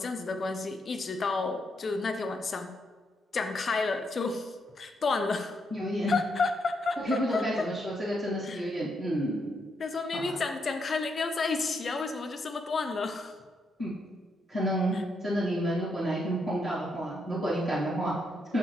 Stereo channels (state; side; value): normal; both; correlation 0.79